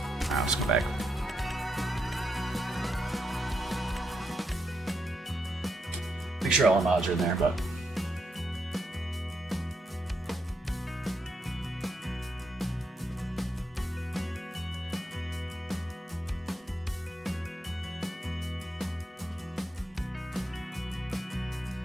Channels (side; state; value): both; normal; correlation 0.81